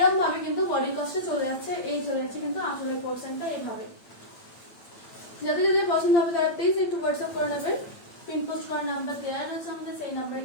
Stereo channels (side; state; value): right; late; 8.8 ms